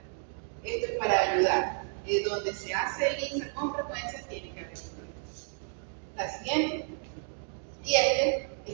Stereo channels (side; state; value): left; silent; 57 dB below the other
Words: Esto es para ayudar. Donde se hace el ISA con frecuencia tiene que haber una. La siguiente. Y este